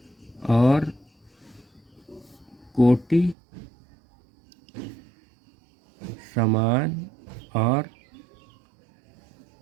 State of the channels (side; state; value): left; drops out; at 3.4 s